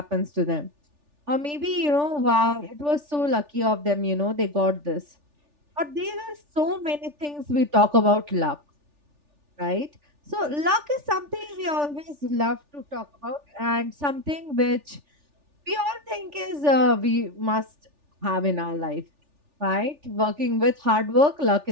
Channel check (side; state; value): left; late; 3.4 ms